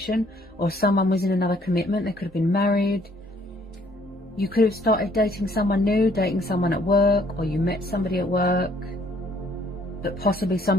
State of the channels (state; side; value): normal; both; correlation 0.63